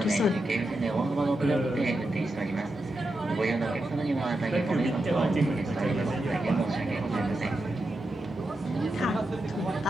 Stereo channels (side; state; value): both; normal; correlation 0.88